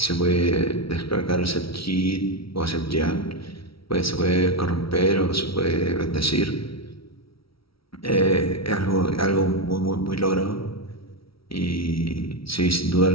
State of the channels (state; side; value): late; right; 0.75 ms